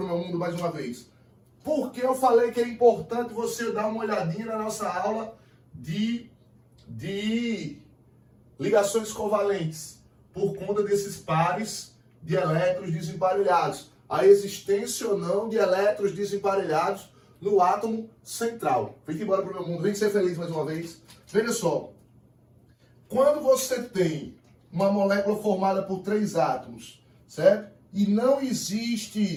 meu mundo mais uma vez. Por que eu falei que é importante você dar uma olhadinha na nossa aula de ligações covalentes? Por conta desses pares de elétrons desemparelhados. A existência ou não de elétrons desemparelhados no átomo central. Vem embora pro meu mundo. Vem ser feliz mais uma vez. Veja só. Quando você tem uma molécula formada por 3 átomos, certo? E não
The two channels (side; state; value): both; identical; correlation 1.00